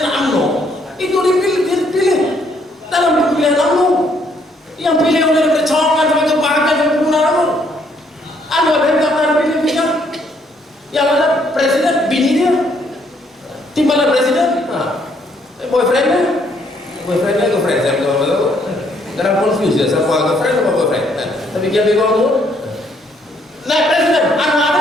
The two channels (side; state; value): both; normal; correlation 0.68